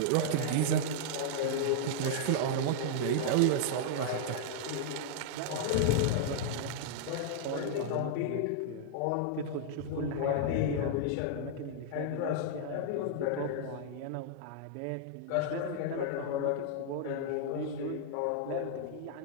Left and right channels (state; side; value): different; both; correlation -0.01